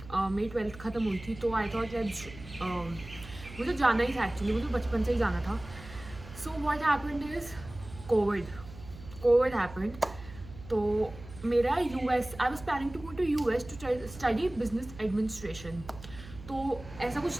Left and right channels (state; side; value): noise; right; hum, 16 dB below the sound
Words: मेरी 12th ख़त्म हुई थी, तो आई थॉट लेट्स, मुझे जाना ही था एक्चुअली, मुझे बचपन से ही जाना था। So what happened is COVID COVID happened. तो मेरा US, I was planning to go to US to study business administration. तो ऐसा